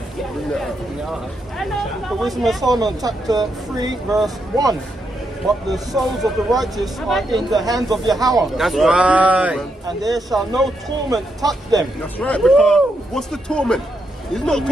The Wisdom of Solomon, chapter 3, verse 1. But the souls of the righteous are in the hands of Yahweh, That's right. and there shall no torment touch them. That's right, because what's the torment? He's not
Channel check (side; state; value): both; normal; correlation 0.81